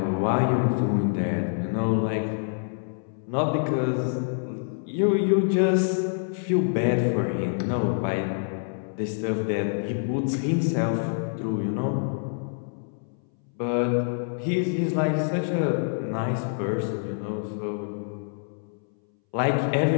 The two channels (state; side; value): silent; right; 61 dB below the other